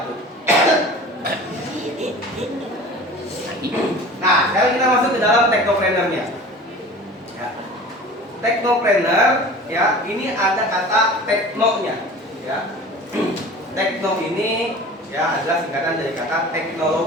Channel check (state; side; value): normal; both; correlation 0.40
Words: Nah, sekarang kita masuk ke dalam technopreneur-nya. Ya. Technopreneur, ya, ini ada kata teknonya, ya. Tekno ini ya adalah singkatan dari kata